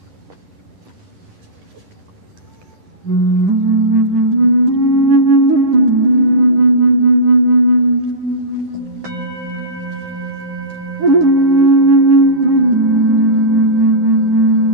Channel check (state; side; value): late; left; 10 ms